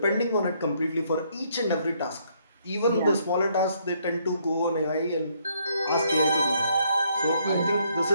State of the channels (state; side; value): inverted; both; correlation -0.70